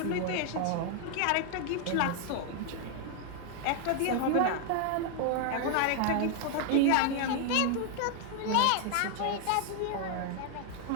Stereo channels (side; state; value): both; different; correlation 0.00